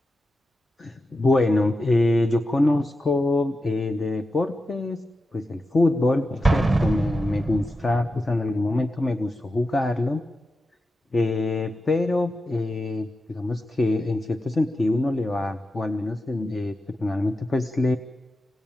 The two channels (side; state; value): both; normal; correlation 0.90